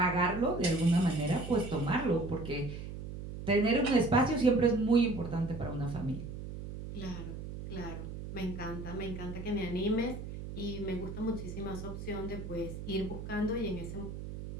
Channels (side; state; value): right; noise; hum, 9 dB below the sound